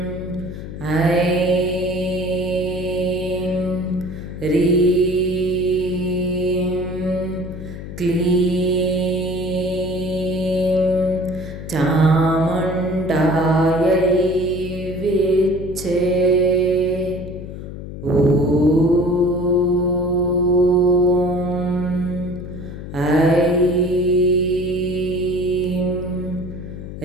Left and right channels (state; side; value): noise; left; hum, 10 dB below the sound